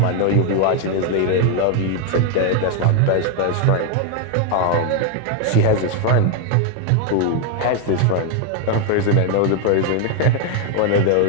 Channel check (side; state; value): both; different; correlation 0.01